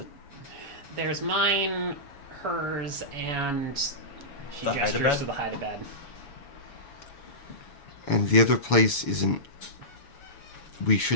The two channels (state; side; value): late; right; 7.1 ms